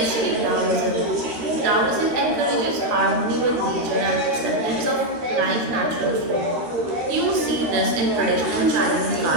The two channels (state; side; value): late; left; 13 ms